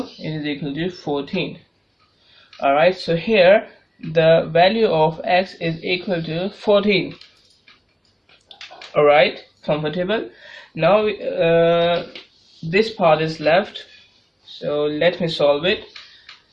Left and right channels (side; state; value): both; identical; correlation 1.00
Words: it is equal to 14. Alright, so here the value of x is equal to 14. Alright, comfortable. Now this part is left, so let me solve it.